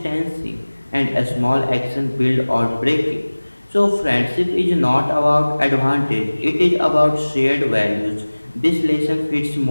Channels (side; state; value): both; inverted; correlation -1.00